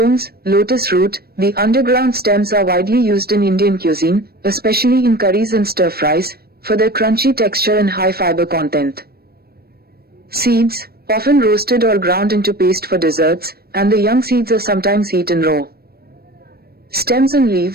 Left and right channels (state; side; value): late; left; 0.45 ms